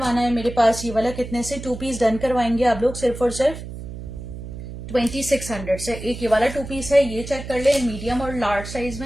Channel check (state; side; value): noise; right; hum, 10 dB below the sound